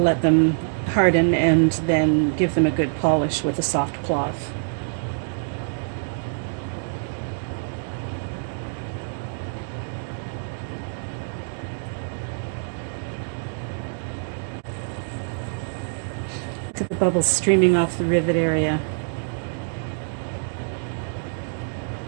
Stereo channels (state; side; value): silent; left; digital silence